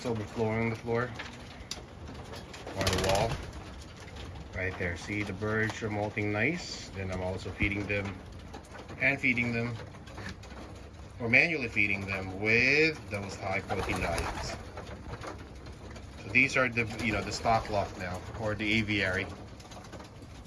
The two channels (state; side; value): identical; both; correlation 1.00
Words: overflowing on the floor, on the wall. Right there, see the birds are molting nice. Then I'm also feeding them, or manually feeding them with those high protein diets. So these are the, the stock lot now, or the aviary.